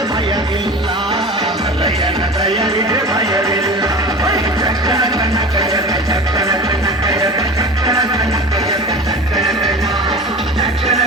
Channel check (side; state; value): both; normal; correlation 0.34